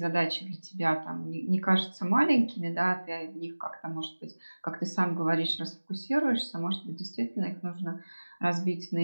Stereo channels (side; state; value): both; inverted; correlation -1.00